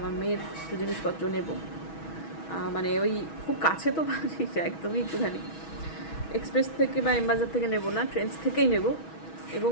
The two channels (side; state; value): right; late; 6.2 ms